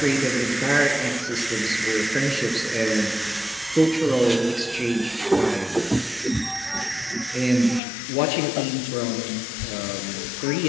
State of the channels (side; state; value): right; drops out; at 7.8 s